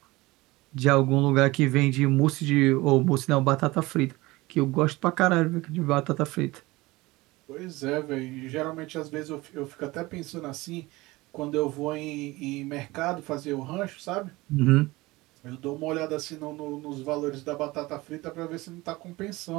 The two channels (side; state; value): left; quieter; 20.9 dB